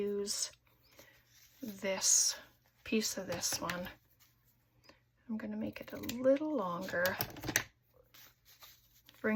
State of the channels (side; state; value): both; identical; correlation 1.00